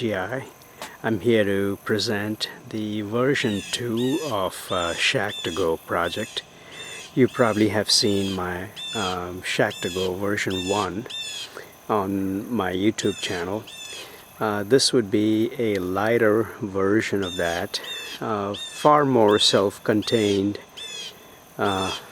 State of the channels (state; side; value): identical; both; correlation 1.00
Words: I'm here to present the version 2 of Shack2Go project. You probably have seen my Shack2Go version 1 on my YouTube channel. This would be a lighter version of that, far more self-contained. Pardon